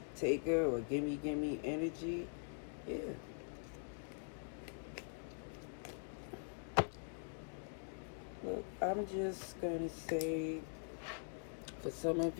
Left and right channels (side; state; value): right; silent; digital silence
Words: taker or gimme energy. Yeah. Look, I'm just going to say, for some of